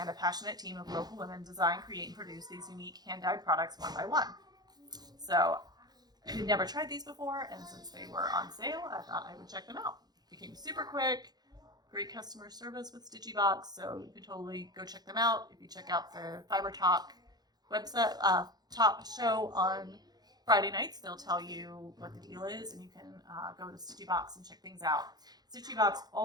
a passionate team of local women design, create, and produce these unique hand-dyed products one by one. So I had never tried these before, and since they were on sale, I thought I would check them out. They came super quick, great customer service with Stitchy Box, so you can totally go check them out. If you check out the Fiber Talk website top show on Friday nights, they'll tell you what the deal is, and you can go to Stitchy Box and check things out. Stitchy Box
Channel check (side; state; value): left; late; 0.19 ms